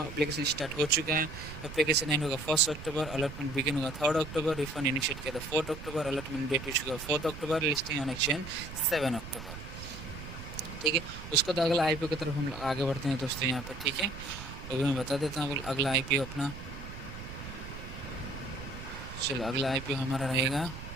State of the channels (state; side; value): noise; right; rumble, 11 dB below the sound